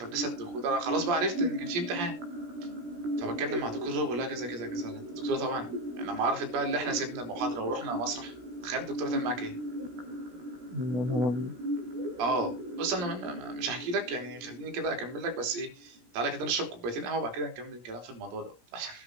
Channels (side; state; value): left; late; 17 ms